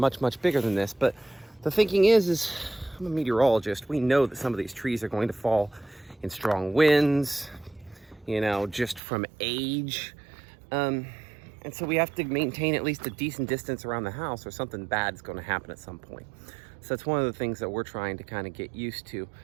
much bigger than this. But the thinking is I'm a meteorologist. We know that some of these trees are going to fall in strong winds, just from age. And so we have to maintain at least a decent distance around the house or something bad is going to happen at some point. So that's one of the things that we're trying to kind of get used to.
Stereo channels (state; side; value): drops out; left; at 9.0 s